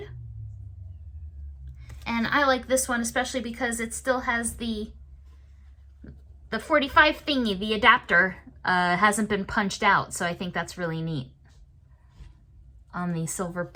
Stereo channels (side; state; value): both; identical; correlation 1.00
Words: And I like this one especially because it still has the 45 thingy, the adapter, hasn't been punched out, so I think that's really neat. On the Silver